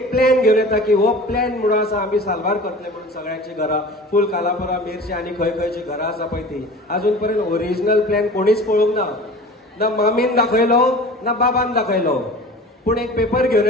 प्लॅन घेवन येता की हो प्लॅन म्हणून आसा आमी साल्वार करतले म्हणून सगळ्यांची घरां फूल कालापुरा मेर्शी आनी खंय खंयची घरां आसा पळय ती अजून पर्यंत ओरिजिनल प्लॅन कोणीच पळोवंक ना. ना मामीन दाखयलो ना बाबान दाखयलो. पूण एक पेपर घेवन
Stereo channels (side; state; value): both; normal; correlation 0.39